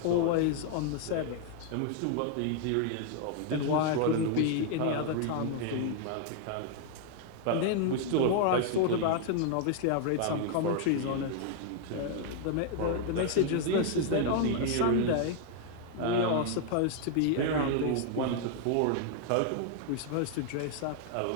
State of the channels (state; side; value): different; both; correlation 0.00